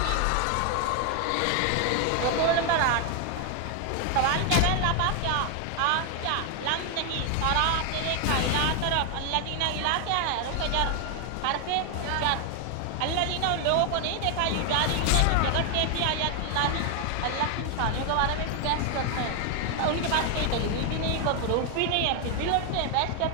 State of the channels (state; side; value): different; both; correlation 0.01